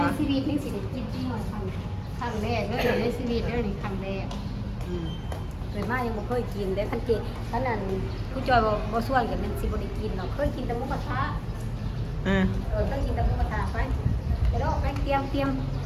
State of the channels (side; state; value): both; identical; correlation 1.00